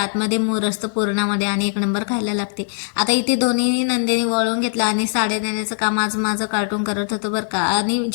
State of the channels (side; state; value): right; silent; 65 dB below the other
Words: मूर असतं पुरणामध्ये आणि एक नंबर खायला लागते. आता इथे दोन्ही नंदेनी वळून घेतला आणि साड्या देण्याचं काम आज माझं कार्टून करत होतं बरं का. आणि